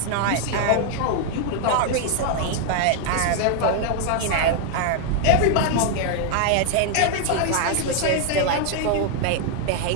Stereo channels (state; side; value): different; both; correlation 0.00